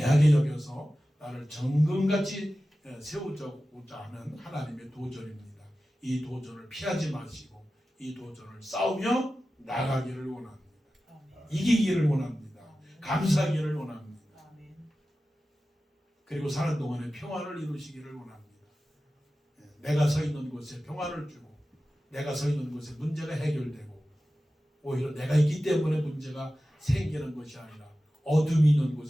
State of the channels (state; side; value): normal; both; correlation 0.95